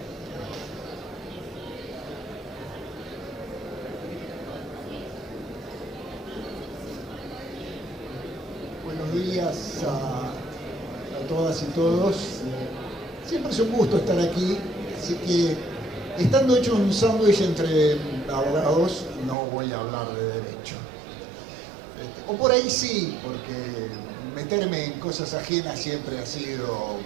Buenos días a todas y todos. Siempre es un gusto estar aquí, así que estando hecho un sándwich entre abogados, no voy a hablar de derecho. O por ahí sí, porque meterme en cosas ajenas siempre ha sido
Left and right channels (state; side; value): drops out; left; at 19.4 s